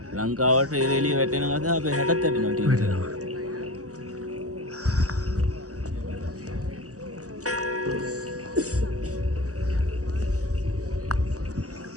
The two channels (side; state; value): left; late; 0.66 ms